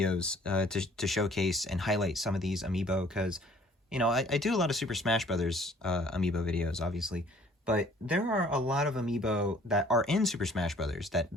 to showcase and highlight some of these Amiibo, because, I do a lot of Super Smash Brothers Amiibo videos, obviously, but there are a lot of Amiibo that are in Super Smash Brothers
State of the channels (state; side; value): normal; both; correlation 0.56